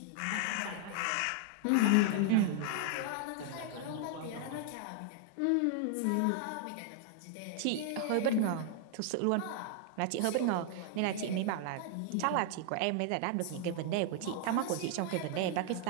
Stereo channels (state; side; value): different; both; correlation 0.00